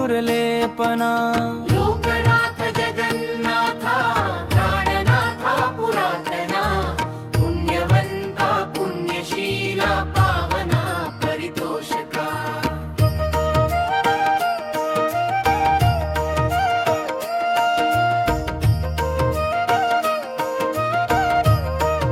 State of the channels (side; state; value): both; identical; correlation 1.00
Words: लोकनाथ जगन्नाथा प्राणनाथा पुरातना पुण्यवंता पुण्यशीला पावना परितोषका